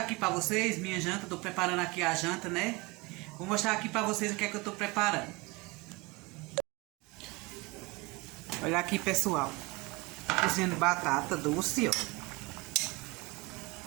para vocês minha janta. Tô preparando aqui a janta, né? Vou mostrar aqui para vocês o que é que eu tô preparando. Olha aqui, pessoal. Cozinhando batata doce, ó.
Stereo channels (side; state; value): left; quieter; 25.0 dB